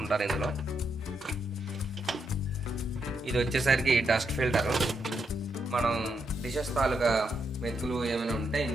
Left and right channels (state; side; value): normal; both; correlation 0.81